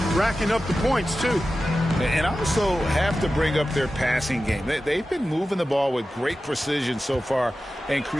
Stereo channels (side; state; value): both; normal; correlation 0.94